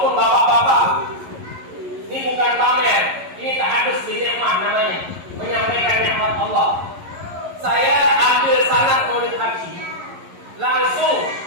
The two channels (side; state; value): left; late; 11 ms